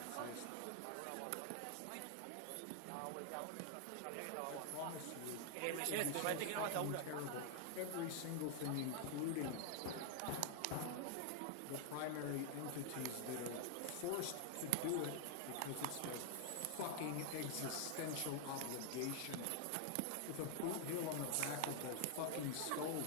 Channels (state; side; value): different; both; correlation 0.00